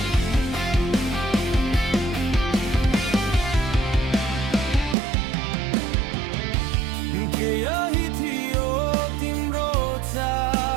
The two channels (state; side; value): drops out; left; at 5.0 s